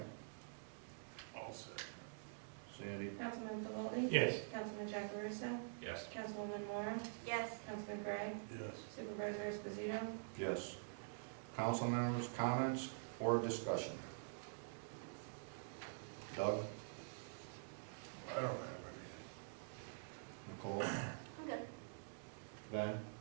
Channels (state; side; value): silent; left; digital silence